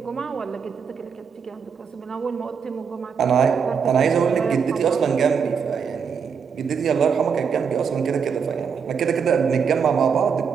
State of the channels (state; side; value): quieter; left; 6.5 dB